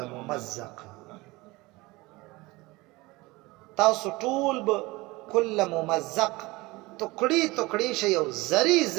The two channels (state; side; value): quieter; left; 22.0 dB